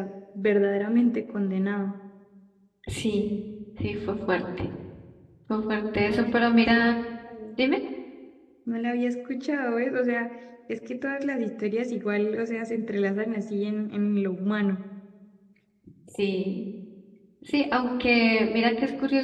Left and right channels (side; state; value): both; identical; correlation 1.00